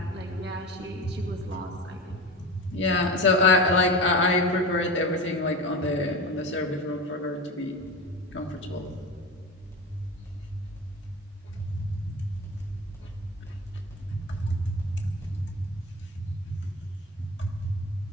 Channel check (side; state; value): both; normal; correlation 0.27